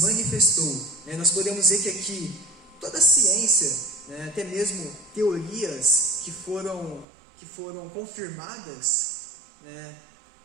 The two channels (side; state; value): left; drops out; at 7.1 s